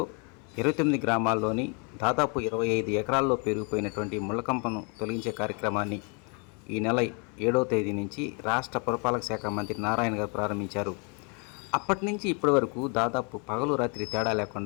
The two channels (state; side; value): quieter; right; 35.2 dB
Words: 29 గ్రామాల్లోని దాదాపు 25 ఎకరాల్లో పెరిగిపోయినటువంటి ముళ్ళకంపను తొలగించే కార్యక్రమాన్ని ఈ నెల 7వ తేదీ నుంచి రాష్ట్ర పురపాలక శాఖ మంత్రి నారాయణ గారు ప్రారంభించారు. అప్పటి నుంచి ఇప్పటి వరకు దాదాపు పగలు రాత్రి తేడా